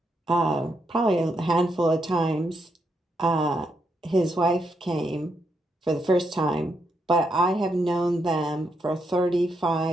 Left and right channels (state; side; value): normal; both; correlation 0.80